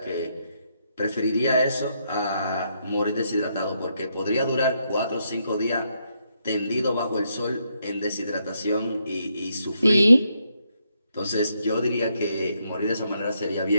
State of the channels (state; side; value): inverted; both; correlation -0.77